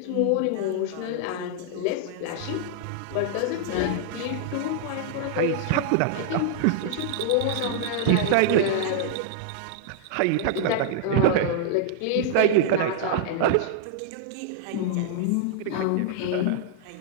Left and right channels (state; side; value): different; both; correlation -0.01